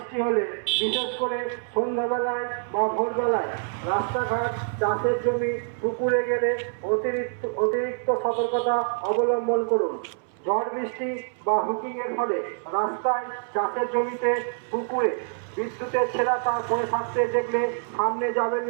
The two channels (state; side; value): silent; left; 61 dB below the other